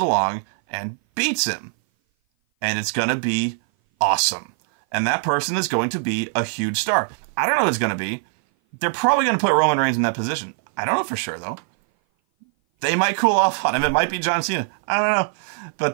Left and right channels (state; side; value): silent; left; 58 dB below the other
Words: and beats him. And it's going to be awesome. And that person is going to be a huge star. I don't know who it's going to be. They're probably going to put Roman Reigns in that position. I don't know for sure, though. They might cool off on him. It might be John Cena. I don't know.